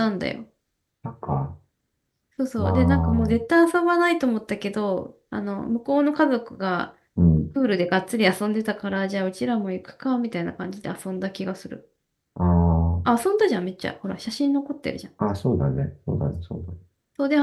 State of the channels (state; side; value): identical; both; correlation 1.00